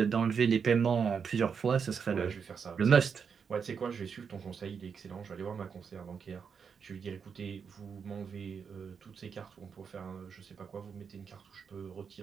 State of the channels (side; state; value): left; quieter; 6.4 dB